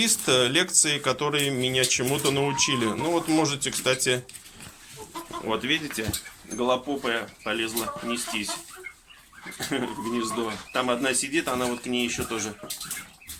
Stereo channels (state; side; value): identical; both; correlation 1.00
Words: лекций, которые меня чему-то научили. Ну вот можете, кстати, вот видите, голопопая полезла нестись в гнездо. Там одна сидит, она вот к ней еще тоже